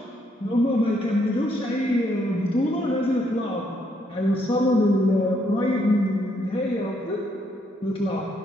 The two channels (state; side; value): normal; both; correlation 0.72